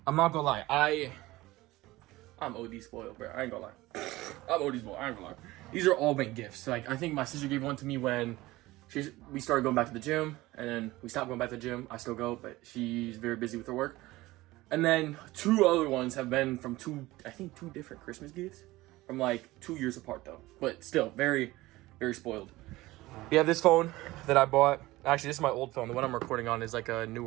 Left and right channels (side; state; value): left; quieter; 18.7 dB